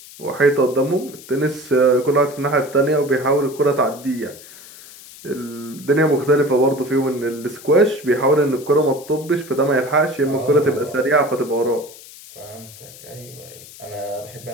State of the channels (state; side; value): noise; left; hiss, 18 dB below the sound